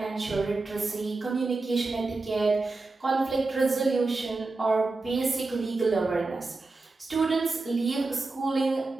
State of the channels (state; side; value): quieter; left; 3.5 dB